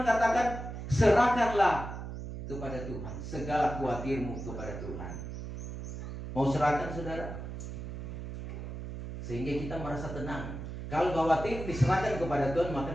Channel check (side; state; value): right; noise; hum, 8 dB below the sound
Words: katakan, serahkanlah kepada Tuhan. Segala khawatirmu kepada Tuhan. Mau serahkan, saudara? Sehingga kita merasa tenang. Kalau khawatir diserahkan kepada Tuhan,